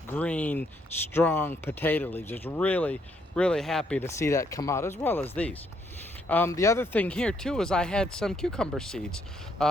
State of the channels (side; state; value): both; normal; correlation 0.72